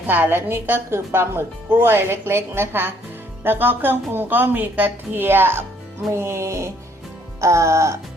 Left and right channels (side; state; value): both; normal; correlation 0.65